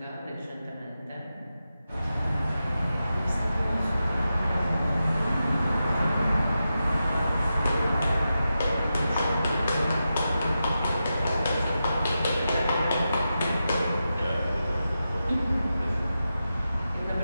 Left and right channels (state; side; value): inverted; both; correlation -0.90